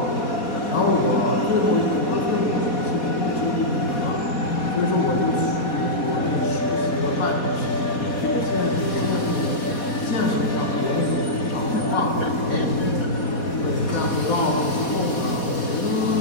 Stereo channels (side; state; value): right; late; 4.2 ms